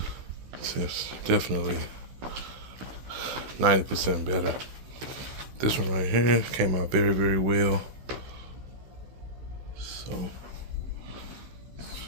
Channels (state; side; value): late; left; 16 ms